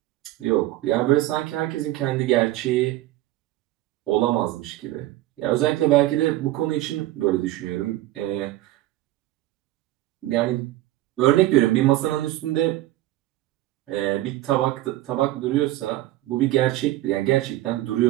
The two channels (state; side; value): quieter; left; 16.0 dB